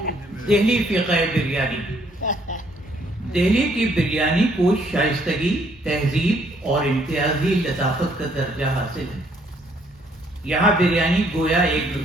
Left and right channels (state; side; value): normal; both; correlation 0.67